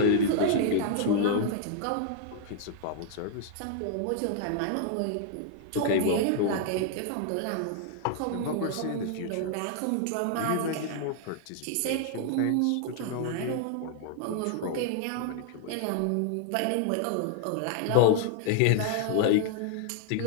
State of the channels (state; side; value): different; both; correlation 0.00